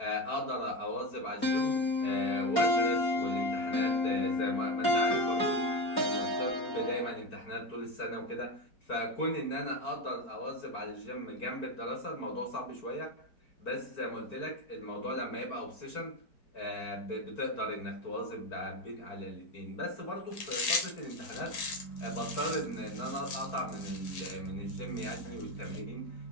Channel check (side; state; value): right; late; 4.5 ms